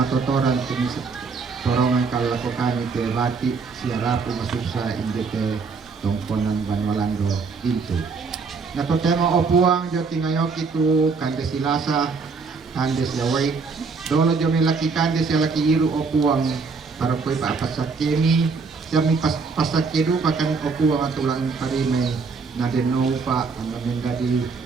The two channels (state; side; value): quieter; left; 4.7 dB